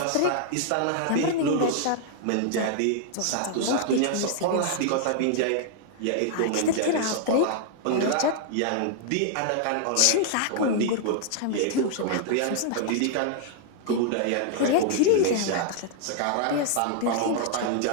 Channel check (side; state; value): both; different; correlation -0.01